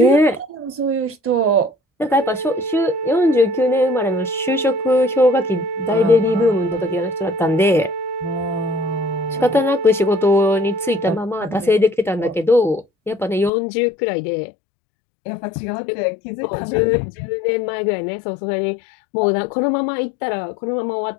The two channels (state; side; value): drops out; right; at 13.5 s